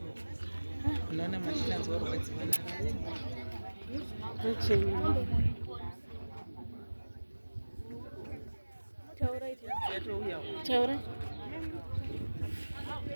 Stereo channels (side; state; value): both; inverted; correlation -1.00